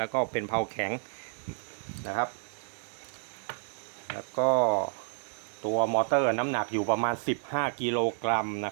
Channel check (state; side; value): silent; left; digital silence